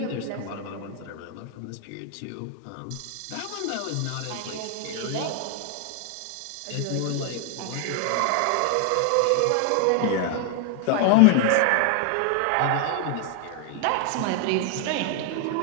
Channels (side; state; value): both; different; correlation 0.00